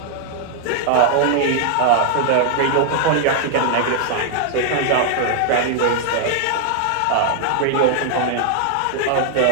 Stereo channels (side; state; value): both; different; correlation 0.00